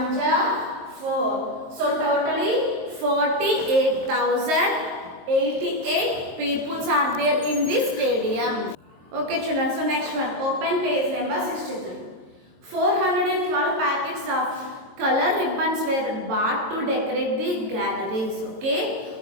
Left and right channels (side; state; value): left; late; 22 ms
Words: are 4. So totally 48,088 people are there in this stadium. Okay, children. So next one, open page number 63. 412 packets of color ribbons were bought to decorate the galleries. Okay,